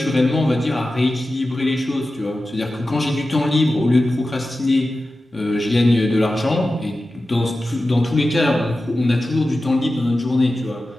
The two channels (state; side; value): normal; both; correlation 0.94